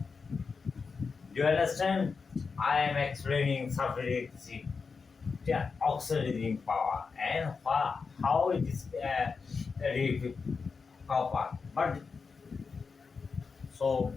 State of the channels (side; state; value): right; quieter; 5.0 dB